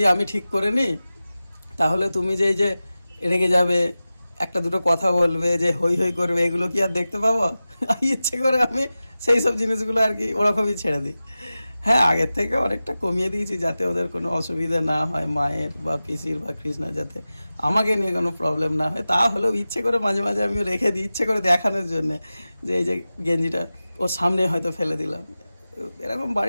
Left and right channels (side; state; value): both; inverted; correlation -0.95